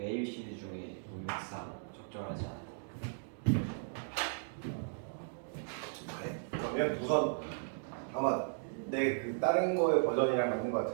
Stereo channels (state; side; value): silent; left; digital silence